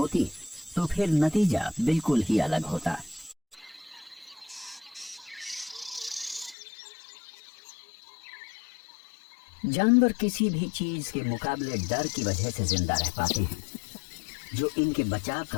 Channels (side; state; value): right; drops out; at 6.6 s